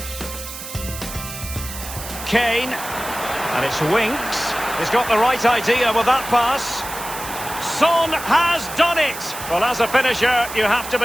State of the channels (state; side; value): noise; right; hiss, 10 dB below the sound